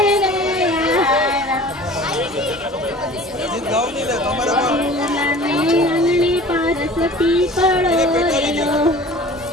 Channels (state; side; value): normal; both; correlation 0.43